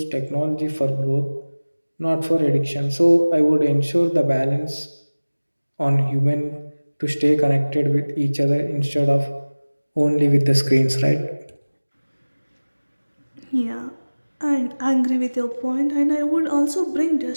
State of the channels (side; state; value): both; inverted; correlation -1.00